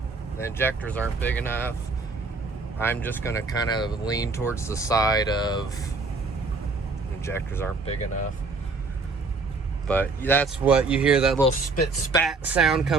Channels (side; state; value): left; quieter; 3.9 dB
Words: the injectors aren't big enough. I'm just gonna kind of lean towards the side of injectors aren't big enough. But that's what you hear, that little spit spat sound